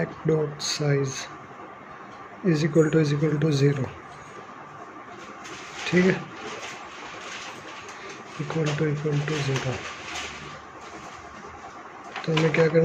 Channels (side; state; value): both; identical; correlation 1.00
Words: dot size is equal to 0, ठीक है, इक्वल टू 0। तो हमें क्या